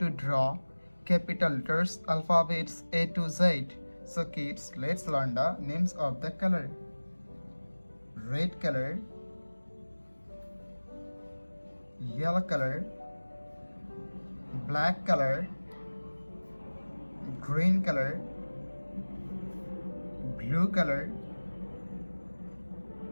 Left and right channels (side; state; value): both; inverted; correlation -1.00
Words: draw capital letters alphabets A to Z. So kids, let's learn the names of the color. Red color, yellow color, black color, green color, blue color,